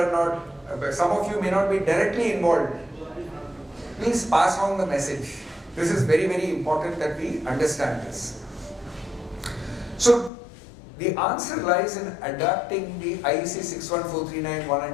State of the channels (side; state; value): right; drops out; at 10.3 s